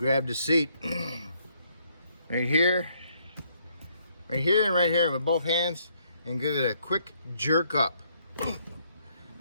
the seat right here, and right here with both hands, and give it a quick jerk up.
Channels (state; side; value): inverted; both; correlation -0.70